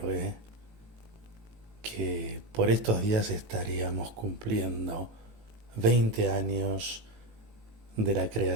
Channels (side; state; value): left; late; 18 ms